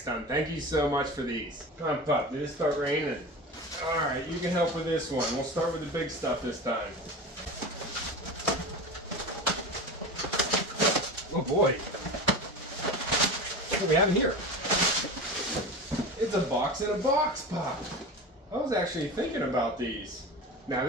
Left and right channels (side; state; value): both; normal; correlation 0.29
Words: done. Thank you so much for these. Come on, Pup, did it start raining? Alright, you can help with this one. We'll start with the big stuff this time. Oh boy. What do we have in here? It's a box in a box, Pop. I was actually thinking about these. Now